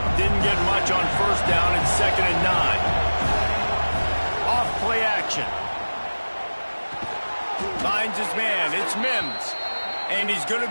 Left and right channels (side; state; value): both; inverted; correlation -1.00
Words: Didn't get much on first down and 2nd and 9. Off play action. Finds his man. It's Mims. And he's going to